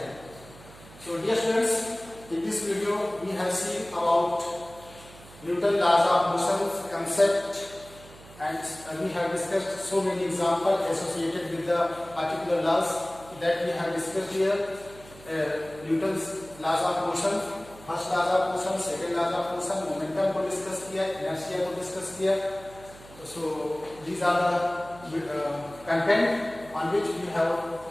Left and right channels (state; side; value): noise; right; hum, 21 dB below the sound